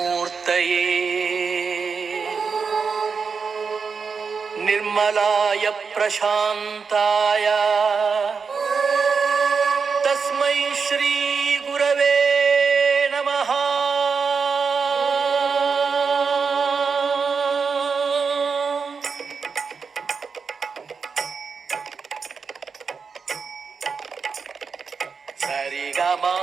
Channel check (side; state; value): left; quieter; 5.4 dB